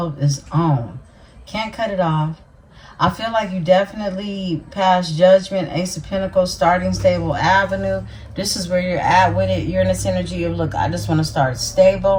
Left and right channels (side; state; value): both; identical; correlation 1.00